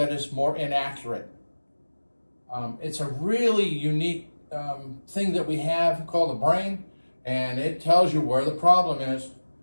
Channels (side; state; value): both; inverted; correlation -1.00